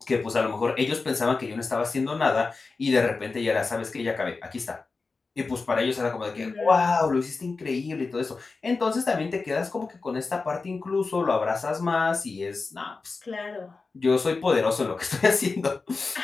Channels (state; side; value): quieter; right; 4.1 dB